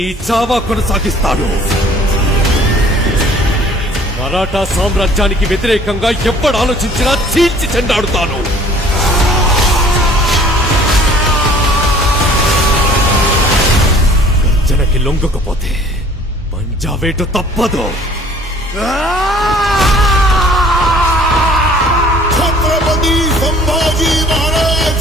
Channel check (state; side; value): normal; both; correlation 0.53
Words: చావా కొనసాగిస్తాడు. మరాఠా సామ్రాజ్యానికి వ్యతిరేకంగా ఎప్పుడు ఆలోచించినా చీల్చి చెండాడుతాను. గర్జనకి లొంగకపోతే పంజావేటు తప్పదు. ఛత్రపతి సంభాజీ